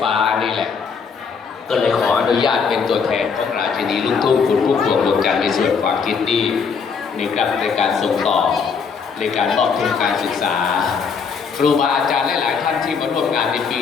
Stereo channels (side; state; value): right; quieter; 5.9 dB